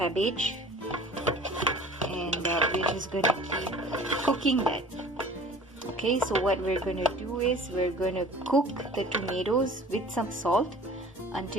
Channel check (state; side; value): normal; both; correlation 0.46